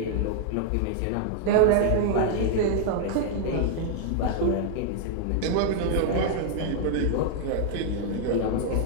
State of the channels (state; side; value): different; both; correlation 0.00